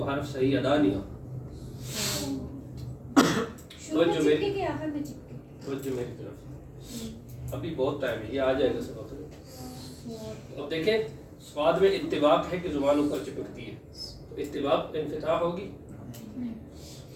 حرف صحیح ادا نہیں ہوتا. توجہ میری طرف ابھی بہت ٹائم ہے, یہ آ جائے گا سبق. اب دیکھیں صاد میں اتباق ہے کہ زبان اوپر چپکتی ہے, تو اتباق انفتاح ہوگی,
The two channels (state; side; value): identical; both; correlation 1.00